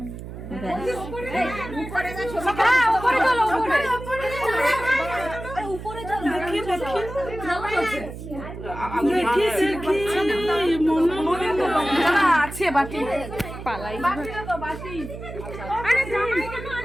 আছে বাটি পালাই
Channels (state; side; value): noise; right; hum, 11 dB below the sound